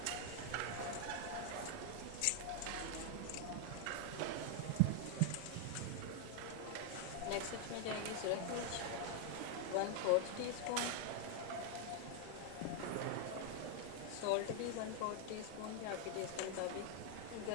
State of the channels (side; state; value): both; different; correlation 0.00